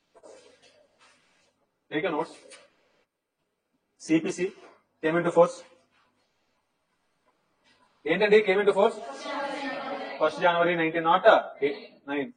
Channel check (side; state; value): both; identical; correlation 1.00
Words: Take a notes. CPC came into force. ఏంటండి came into force? 1st January 1909.